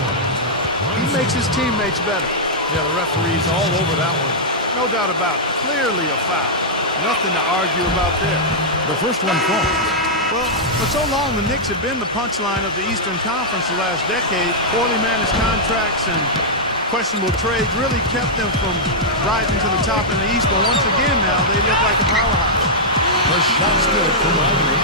He makes his teammates better. Yeah, the referee's all over that one. No doubt about it. Clearly a foul. Nothing to argue about there. The first one falls. Well, for so long, the Knicks have been the punchline of the Eastern Conference the last decade. Poorly managed contracts and questionable trades really kept them from rising to the top in the East. But once again now, they look like a powerhouse. The shot's good from Wagner.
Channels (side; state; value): both; normal; correlation -0.08